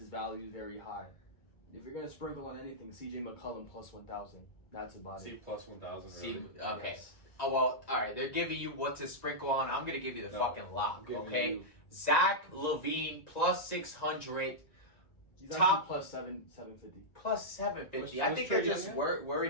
value is very high. If you're gonna sprinkle on anything, CJ McCollum plus 1000. That's about See it. plus 1,000. See, Really? okay. Yes. Oh well, all right. They're giving you what to sprinkle on. I'm gonna give you the No, fucking lock. I'm giving Okay. you- Zach LaVine plus 600, He's Top- actually plus 750. plus 750. What's I think Trae they're just Young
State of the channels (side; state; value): right; late; 1.9 ms